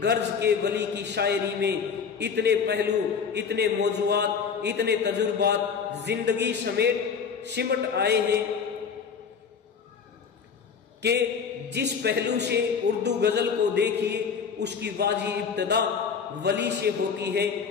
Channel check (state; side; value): quieter; right; 6.3 dB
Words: غرض کے ولی کی شاعری میں اتنے پہلو، اتنے موضوعات، اتنے تجربات زندگی سمٹ آئے ہیں کہ جس پہلو سے اردو غزل کو دیکھیے اس کی واجی ابتدا ولی سے ہوتی ہے۔